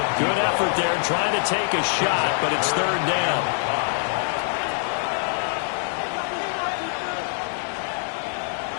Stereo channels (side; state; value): right; silent; 62 dB below the other